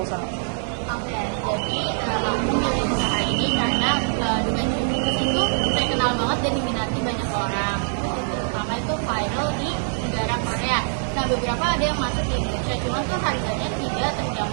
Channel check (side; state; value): left; silent; digital silence